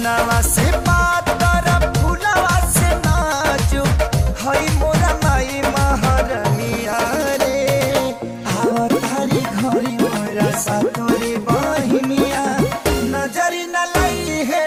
बनवा से पातर फुलवा से नाजुक हई मोरा माई महारनिया रे आवतारी घरी मोरा सातोरी बहिनिया नजरी न लाई है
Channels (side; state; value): both; identical; correlation 1.00